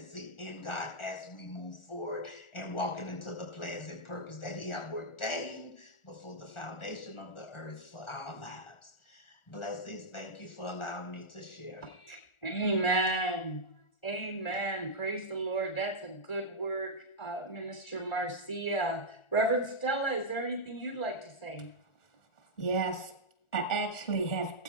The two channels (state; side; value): late; right; 1.4 ms